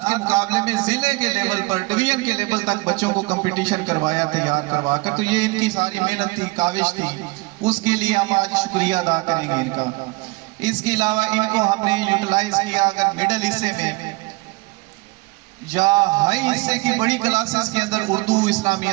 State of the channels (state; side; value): quieter; left; 24.5 dB